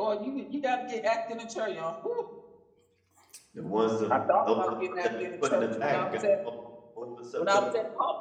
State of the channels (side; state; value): both; identical; correlation 1.00